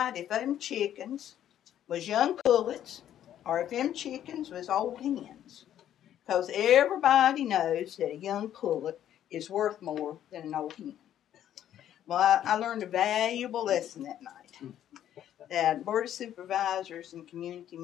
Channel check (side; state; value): right; quieter; 11.0 dB